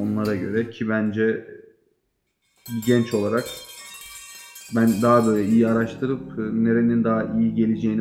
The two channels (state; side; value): identical; both; correlation 1.00